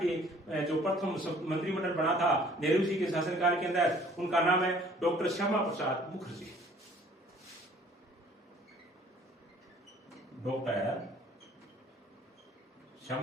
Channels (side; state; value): both; normal; correlation 0.55